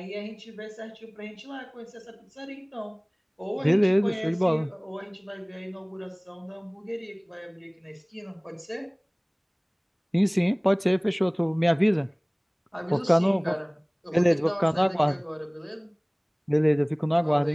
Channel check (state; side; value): identical; both; correlation 1.00